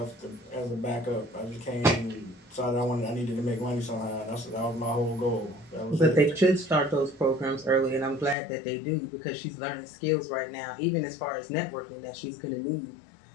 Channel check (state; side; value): drops out; right; at 8.3 s